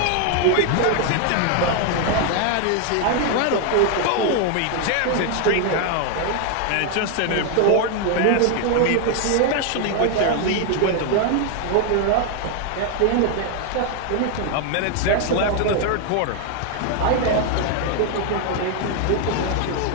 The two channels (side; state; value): both; different; correlation 0.00